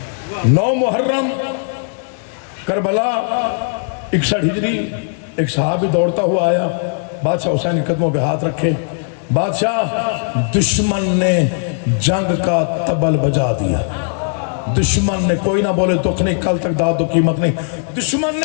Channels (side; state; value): right; silent; digital silence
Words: 9 محرم کربلا 61 ہجری، ایک صحابی دوڑتا ہوا آیا، بادشاہ حسین کے قدموں پہ ہاتھ رکھے، بادشاہ دشمن نے جنگ کا طبل بجا دیا۔ دشمن نے، کوئی نہ بولے دکھ نہیں، کل تک داد و قیمت نہیں، دشمن